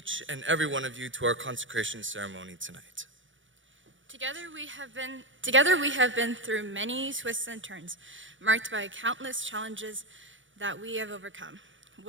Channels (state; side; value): late; left; 0.56 ms